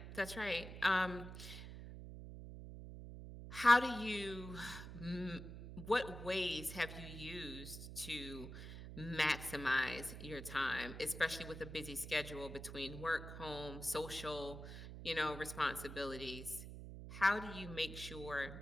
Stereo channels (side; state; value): right; noise; hum, 10 dB below the sound